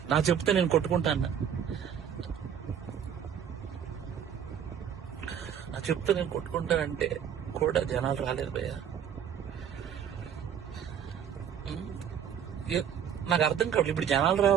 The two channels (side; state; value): left; quieter; 8.6 dB